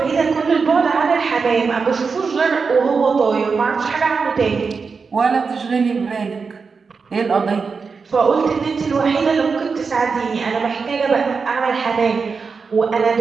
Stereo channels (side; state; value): left; quieter; 5.1 dB